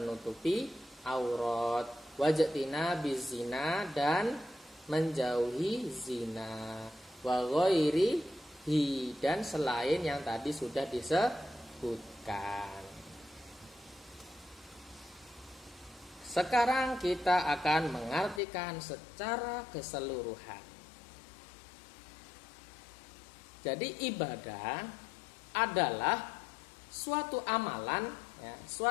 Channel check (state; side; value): drops out; right; at 18.4 s